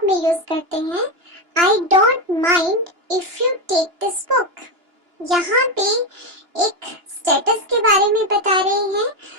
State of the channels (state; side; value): late; left; 2.9 ms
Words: में यूज करते हैं, I don't mind if you take this book. यहाँ पे एक स्टेटस के बारे में बता रहे हैं,